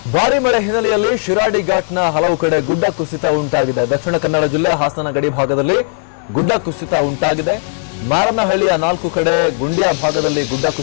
ಭಾರಿ ಮಳೆ ಹಿನ್ನೆಲೆಯಲ್ಲಿ ಶಿರಾಡಿ ಘಾಟ್ನ ಹಲವು ಕಡೆ ಗುಡ್ಡ ಕುಸಿತ ಉಂಟಾಗಿದೆ. ದಕ್ಷಿಣ ಕನ್ನಡ ಜಿಲ್ಲೆ ಹಾಸನ ಗಡಿ ಭಾಗದಲ್ಲಿ ಗುಡ್ಡ ಕುಸಿತ ಉಂಟಾಗಿದೆ. ಮಾರನಹಳ್ಳಿಯ 4 ಕಡೆ ಗುಂಡ್ಯ ಭಾಗದಲ್ಲಿ ಗುಡ್ಡ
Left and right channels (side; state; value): right; silent; digital silence